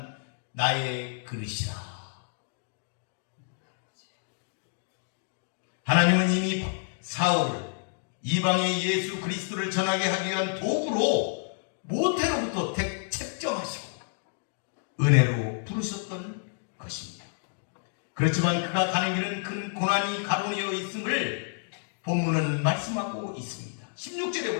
나의 그릇이라. 하나님은 이미 사울을 이방의 예수 그리스도를 전하게 하기 위한 도구로 모태로부터 책정하시고 은혜로 부르셨던 것입니다. 그렇지만 그가 가는 길은 큰 고난이 가로되어 있음을 본문은 말씀하고 있습니다. 16절에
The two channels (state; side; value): silent; right; digital silence